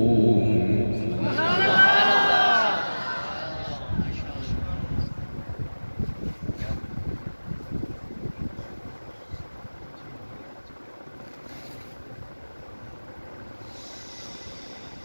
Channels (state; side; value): inverted; both; correlation -1.00